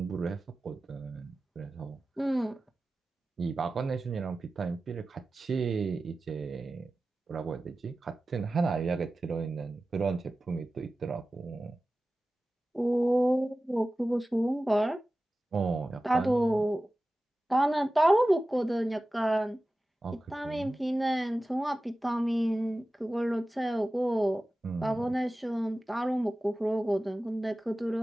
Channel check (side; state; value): both; normal; correlation 0.95